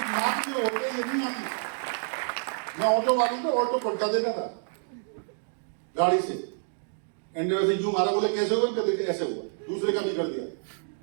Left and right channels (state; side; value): silent; left; digital silence